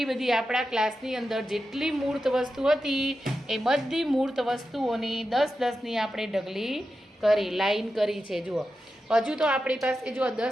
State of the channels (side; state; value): both; normal; correlation 0.90